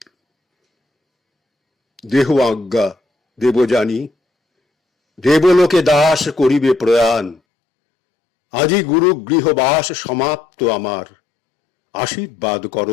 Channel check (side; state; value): right; drops out; at 7.4 s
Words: দেহ আজ্ঞা দেবযানী, দেবলোকে দাস করিবে প্রয়াণ। আজি গুরু গৃহবাস সমাপ্ত আমার, আশীর্বাদ কর